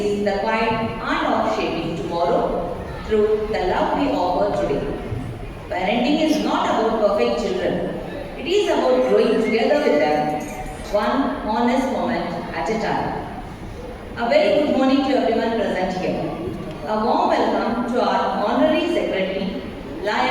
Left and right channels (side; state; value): both; identical; correlation 1.00